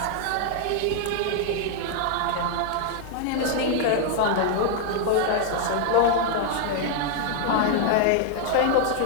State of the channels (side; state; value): both; different; correlation 0.00